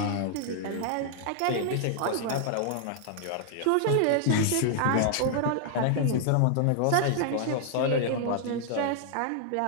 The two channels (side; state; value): both; different; correlation -0.01